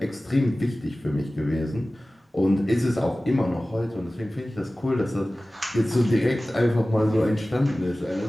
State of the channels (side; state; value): both; normal; correlation 0.97